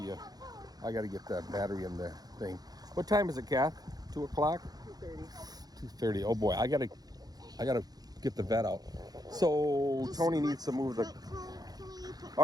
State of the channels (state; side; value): late; left; 0.19 ms